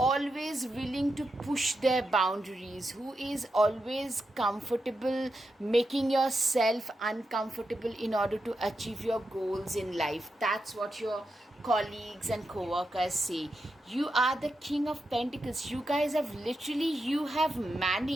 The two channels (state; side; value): normal; both; correlation 0.87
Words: willing to push their boundaries, who is always comfortable making yourself uncomfortable in order to achieve your goals in life. That's what your colleagues and co-workers say. You are the King of Pentacles. You guys have you have